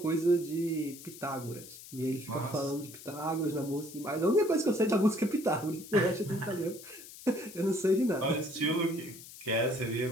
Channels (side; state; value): left; noise; hiss, 16 dB below the sound